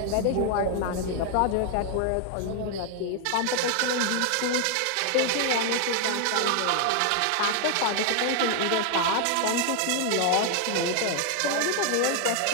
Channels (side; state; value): both; different; correlation 0.00